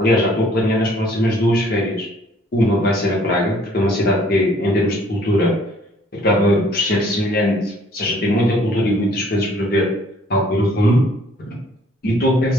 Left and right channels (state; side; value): normal; both; correlation 0.59